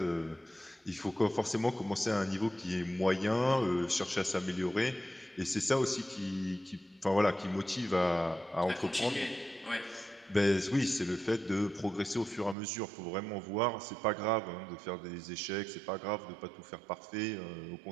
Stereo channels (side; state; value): left; drops out; at 12.6 s